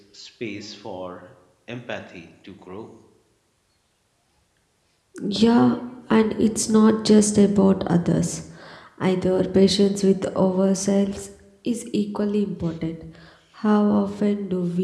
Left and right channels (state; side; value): identical; both; correlation 1.00